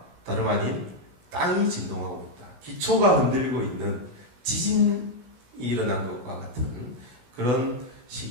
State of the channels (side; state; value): left; late; 16 ms